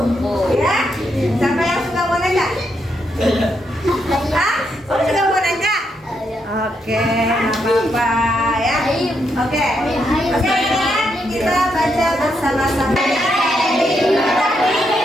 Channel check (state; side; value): normal; both; correlation 0.79